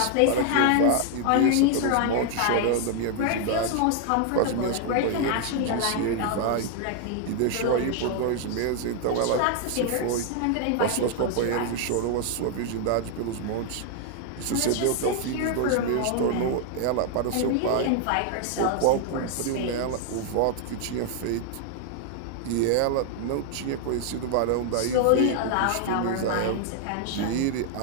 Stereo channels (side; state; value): both; different; correlation 0.00